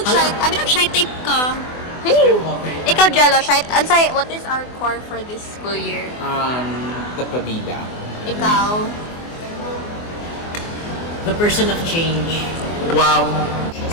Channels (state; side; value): late; right; 24 ms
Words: type ka. Hey. Ikaw, Jello, shy. Ansay, what is our core for this school year? The Pabida. Ikaw. The person of change. Wow.